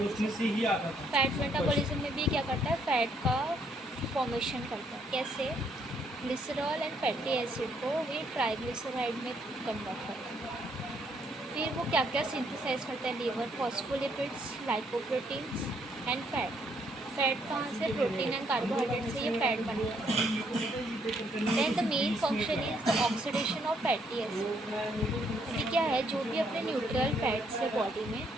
फैट मेटाबॉलिज्म में भी क्या करता है, फैट का फॉर्मेशन करता है। कैसे? ग्लिसरॉल एंड फैटी एसिड को ये ट्राइग्लिसराइड में कन्वर्ट करता है। फिर वो क्या क्या सिंथेसाइज करता है liver? Phospholipids, lipoproteins and fat. Fat कहाँ से? प्रोटीन एंड कार्बोहाइड्रेट से ये फैट बनता है। Then the main function is the oxidation of fatty acid. अभी क्या है, जो भी अपने न्यूट्रल फैट्स है बॉडी में,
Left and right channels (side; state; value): both; normal; correlation 0.71